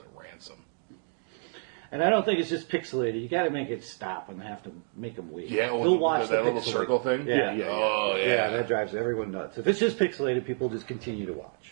ransom. And I don't think it's just pixelated. You got to make it stop and have to make them wait. Yeah, they'll watch that the little pixelated. circle thing. Yeah. Oh, yeah. Yeah, that drives everyone nuts. If it's just pixelated, people just continue to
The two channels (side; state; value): left; silent; 59 dB below the other